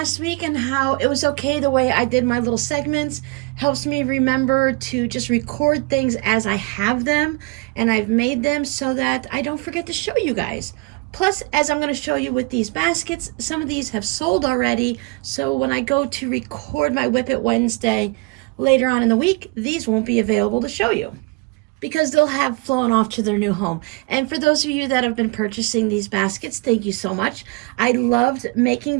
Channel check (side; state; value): left; quieter; 27.0 dB